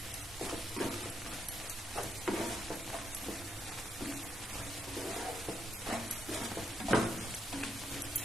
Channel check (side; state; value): both; normal; correlation 0.78